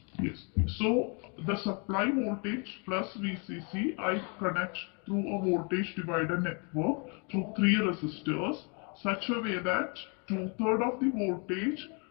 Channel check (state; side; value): quieter; right; 35.4 dB